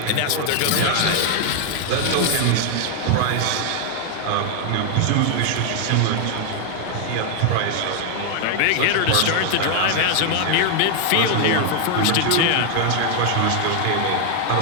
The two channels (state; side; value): different; both; correlation 0.00